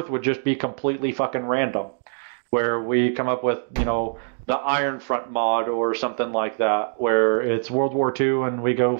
would just be completely fucking random. where we come up with, the Iron Front mod or something like that, where it's World War II and we go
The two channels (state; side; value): silent; left; digital silence